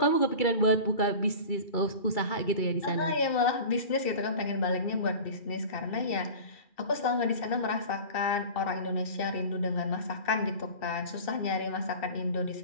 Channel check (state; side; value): late; right; 2.7 ms